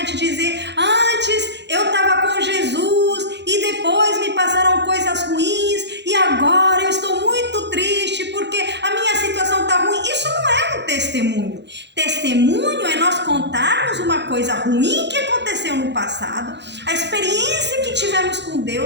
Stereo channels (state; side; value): late; left; 0.51 ms